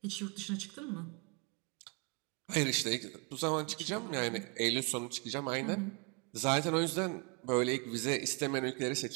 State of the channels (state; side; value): quieter; left; 33.3 dB